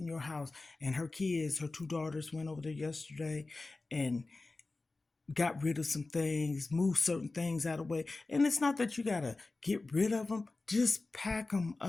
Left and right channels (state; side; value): quieter; right; 3.4 dB